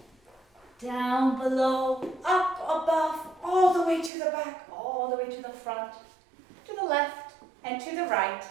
down below, up above, all the way to the back, all the way to the front, to the left, and to the right.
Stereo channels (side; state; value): left; drops out; at 4.1 s